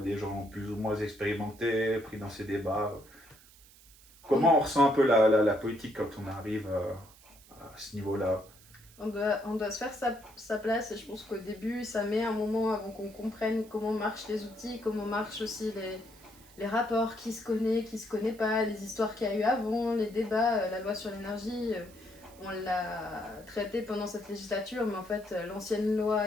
des gens plus ou moins expérimentés, pris dans ces débats? Comment on ressent un peu la politique quand on arrive à ce niveau-là? On doit se faire sa place, et je pense qu'au début, ça met un moment avant qu'on comprenne comment marchent les outils, comment marchent aussi les rapports, qui se connaît pas, les histoires qu'il y a eu avant, les débats, la loi sur l'énergie. On l'a traité pendant cette législature, mais en fait, l'ancienne loi,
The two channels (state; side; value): noise; right; hiss, 24 dB below the sound